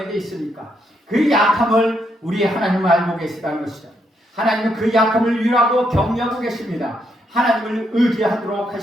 있습니까? 그 약함을 우리 하나님은 알고 계시다는 것이죠. 하나님은 그 약함을 위로하고 격려하고 계십니다. 하나님을 의지하도록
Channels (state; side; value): normal; both; correlation 0.77